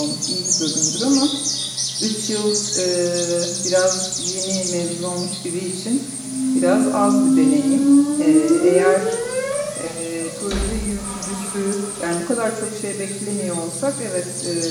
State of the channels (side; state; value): both; identical; correlation 1.00